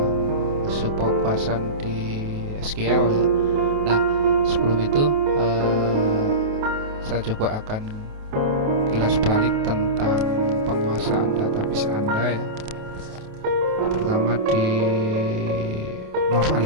subpopulasi di SQL ya. Nah, sebelum itu saya coba akan kilas balik tentang penguasaan database Anda ya. Pertama di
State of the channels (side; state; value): left; late; 28 ms